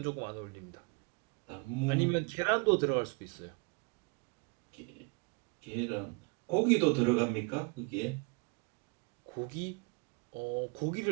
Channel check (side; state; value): left; quieter; 30.8 dB